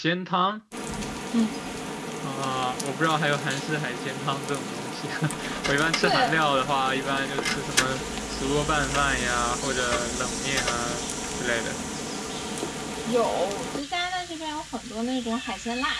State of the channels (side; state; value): both; identical; correlation 1.00